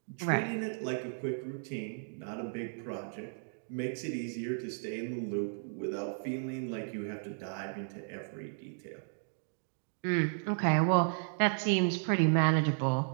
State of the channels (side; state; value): left; silent; digital silence